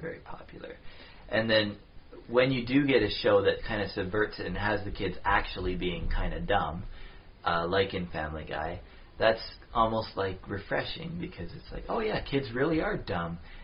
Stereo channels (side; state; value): both; identical; correlation 1.00